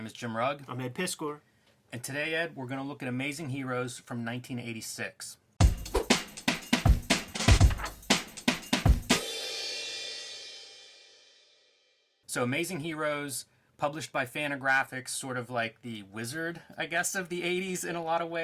is Jim Rugg. I'm Ed Piskor. And today, Ed, we're going to look at Amazing Heroes from 1986. So Amazing Heroes, published by Fantagraphics, sort of like the Wizard, I guess, of the 80s in a lot of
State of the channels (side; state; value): both; identical; correlation 1.00